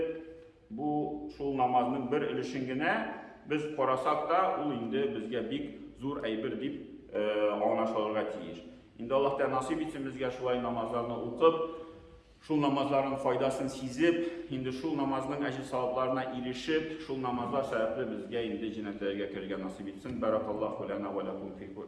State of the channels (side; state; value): both; identical; correlation 1.00